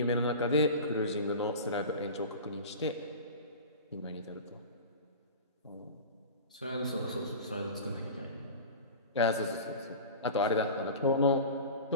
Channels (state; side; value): inverted; both; correlation -0.32